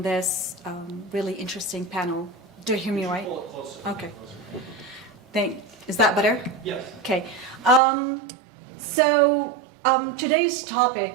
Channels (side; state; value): left; drops out; at 7.8 s